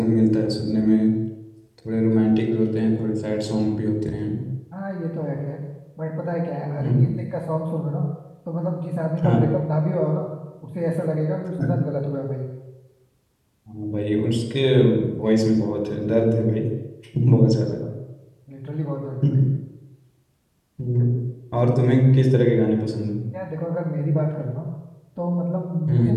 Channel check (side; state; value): both; identical; correlation 1.00